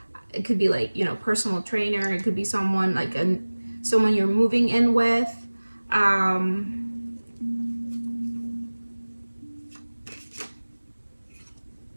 It could be like, you know, personal trainer. It could be someone like someone you're moving in with.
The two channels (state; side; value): inverted; both; correlation -1.00